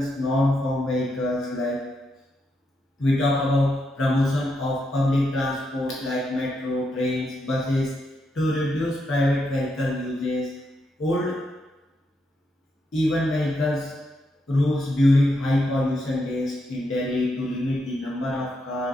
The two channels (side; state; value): both; normal; correlation 0.81